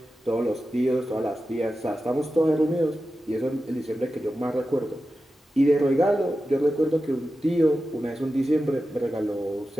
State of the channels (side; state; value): both; normal; correlation 0.92